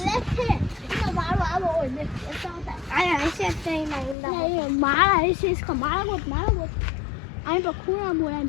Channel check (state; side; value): drops out; right; at 4.2 s